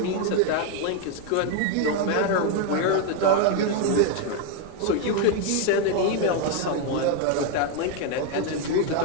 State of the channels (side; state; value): both; different; correlation 0.01